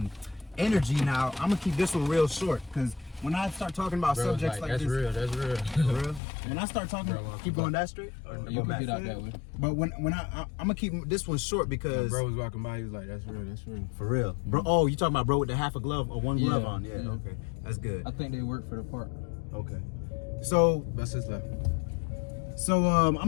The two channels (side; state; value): right; drops out; at 6.2 s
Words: energy, now I'm gonna keep this one real short because when I start talking about Bro, subjects like that's this, real. That's real. for real, when I start talking, Bro, keep going that straight. Or You go can back? get out that way. But when I'm gonna keep this one short because Bro was walking by. He was like, "That's real. That's real." for real, bro. Oh, you talking about bro with the half a glove or one glove Yeah, on? Yeah, yeah. okay, that's good. I think they work for the park. Okay, so Bust his left. I'm